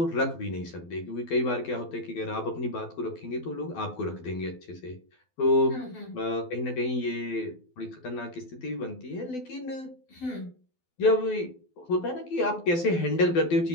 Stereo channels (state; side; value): late; right; 12 ms